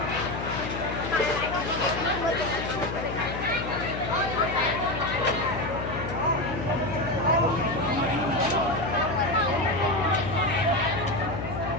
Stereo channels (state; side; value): noise; left; hum, 6 dB below the sound